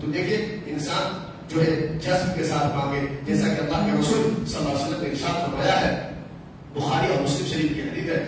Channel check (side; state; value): both; identical; correlation 1.00